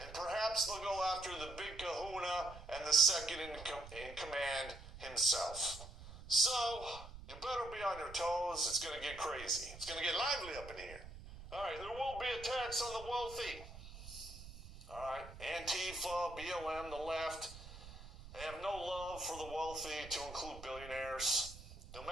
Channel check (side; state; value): right; noise; rumble, 14 dB below the sound